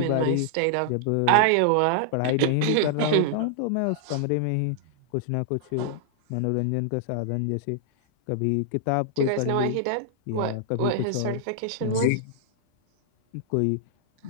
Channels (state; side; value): different; both; correlation -0.01